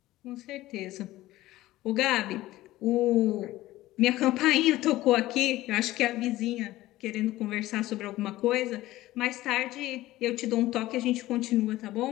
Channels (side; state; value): right; quieter; 16.5 dB